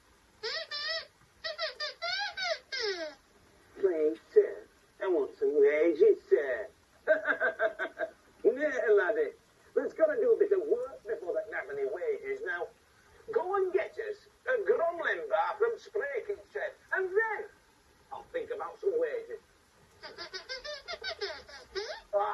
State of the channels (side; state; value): both; identical; correlation 1.00